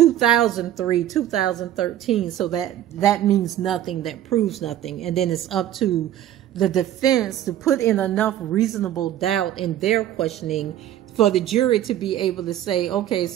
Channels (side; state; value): left; quieter; 11.9 dB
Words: 2013. So that means nothing. That proves nothing. And then it's up to the defense to put in enough reasonable doubt in their questioning for the jury to be able to say, okay,